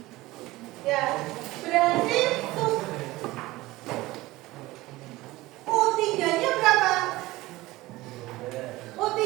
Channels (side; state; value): left; quieter; 19.0 dB